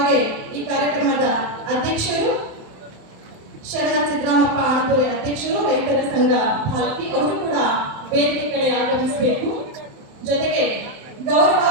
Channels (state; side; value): late; left; 27 ms